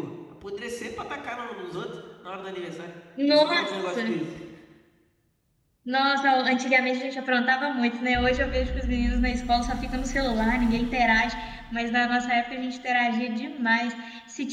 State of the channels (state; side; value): identical; both; correlation 1.00